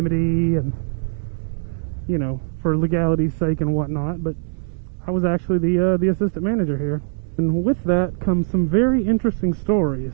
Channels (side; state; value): left; silent; digital silence